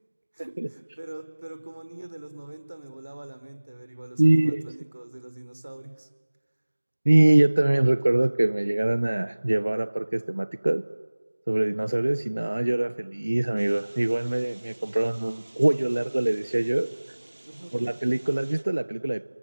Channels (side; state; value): both; inverted; correlation -1.00